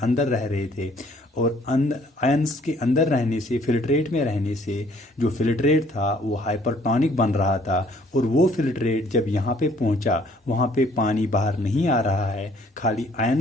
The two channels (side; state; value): both; normal; correlation 0.60